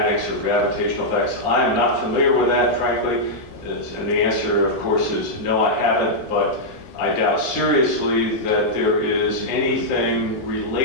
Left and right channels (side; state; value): right; late; 19 ms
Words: or gravitational effects. I am not familiar with that, frankly, and the answer, of course, is no, I haven't, but I doubt seriously that there is anything